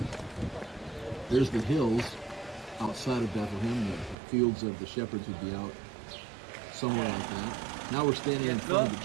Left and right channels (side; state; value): left; drops out; at 4.2 s